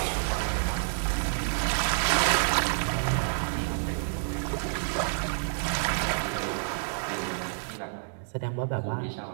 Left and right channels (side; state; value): left; silent; digital silence